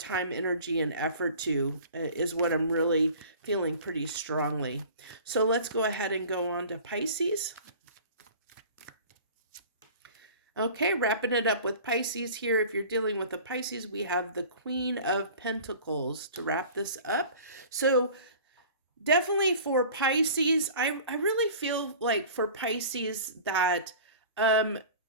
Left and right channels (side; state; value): both; inverted; correlation -0.43